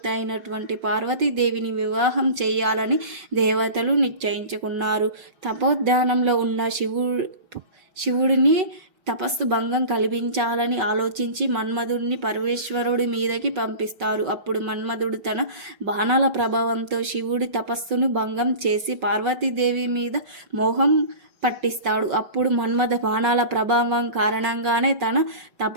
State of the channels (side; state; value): left; late; 5.4 ms